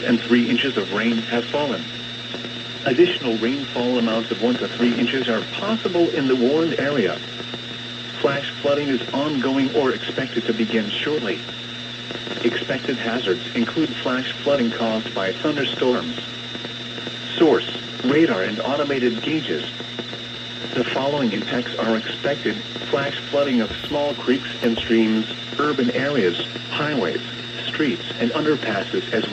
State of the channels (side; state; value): both; identical; correlation 1.00